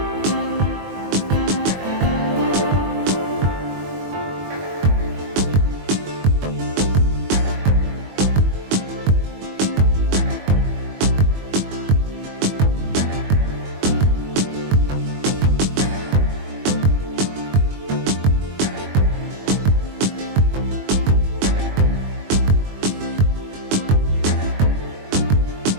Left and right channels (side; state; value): left; late; 21 ms